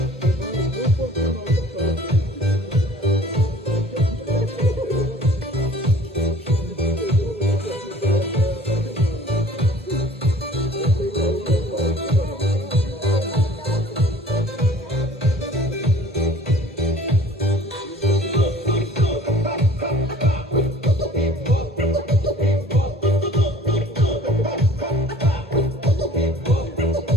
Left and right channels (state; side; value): normal; both; correlation 0.50